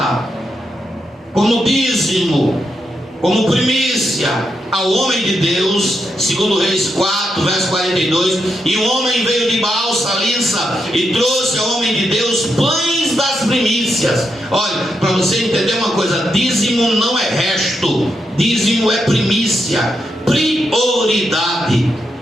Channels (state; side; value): normal; both; correlation 0.83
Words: como dízimo, como primícia, ao homem de Deus, segundo Reis 4, verso 42, e o homem veio de Baal Salissa e trouxe ao homem de Deus pães das primícias. Olha, para você entender uma coisa, dízimo não é resto, dízimo é primícia, prioridade.